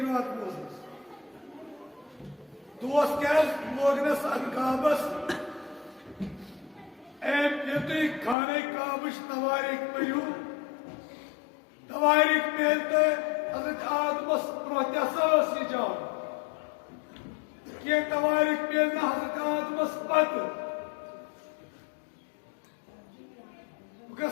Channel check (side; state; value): right; drops out; at 8.3 s